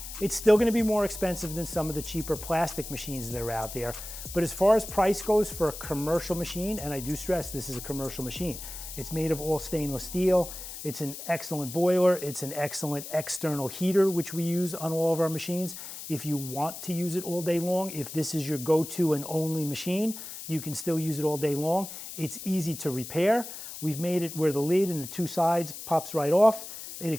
It's still going to be more expensive than some of the cheaper plastic machines that are out there. But as far as price goes for a commercial machine, and I do stress this is a commercial machine, it's made of all stainless steel. It's an excellent boiler. It's an excellent external heater, which we use on all of our machines. If you want to use it all day long, if this is your go-to and only machine, you can still use it all day long. It's easy to repair. We've made it where the lid and the two sides pops right off. It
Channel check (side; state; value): left; noise; hiss, 10 dB below the sound